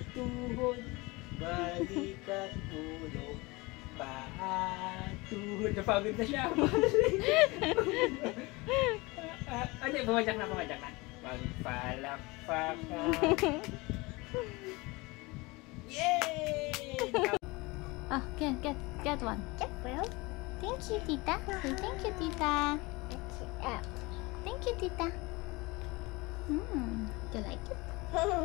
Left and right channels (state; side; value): quieter; right; 24.0 dB